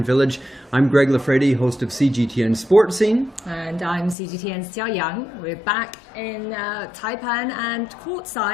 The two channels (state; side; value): drops out; right; at 4.2 s